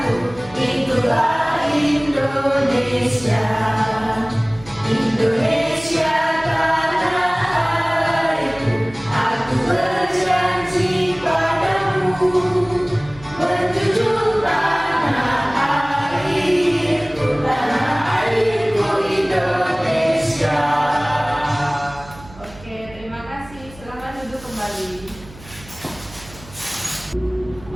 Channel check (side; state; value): right; noise; hum, 20 dB below the sound